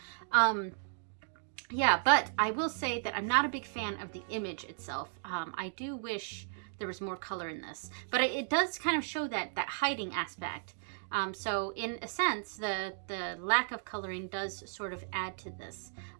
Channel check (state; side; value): silent; left; digital silence